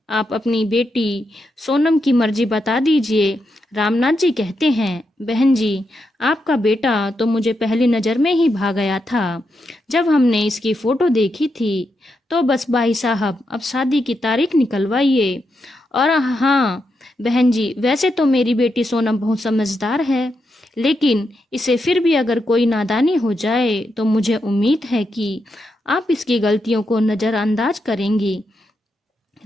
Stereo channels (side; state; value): both; normal; correlation 0.84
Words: आप अपनी बेटी सोनम की मर्जी बता दीजिए। रामनाथ जी कहते हैं, बहन जी, आपका बेटा तो मुझे पहली नज़र में ही भा गया था। जब हमने इसकी फ़ोटो देखी थी तो बस भाई साहब अब शादी की तारीख निकलवाइए। और हाँ बहन जी, वैसे तो मेरी बेटी सोनम बहुत समझदार है, लेकिन इसे फिर भी अगर कोई नादानी हो जाए तो मुझे उम्मीद है कि आप इसकी गलतियों को नज़रअंदाज करेंगी।